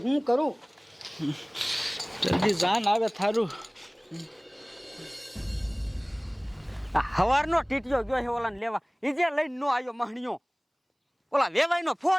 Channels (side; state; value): both; identical; correlation 1.00